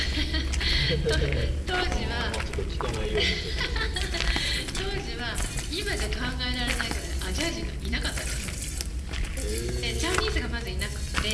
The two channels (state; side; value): identical; both; correlation 1.00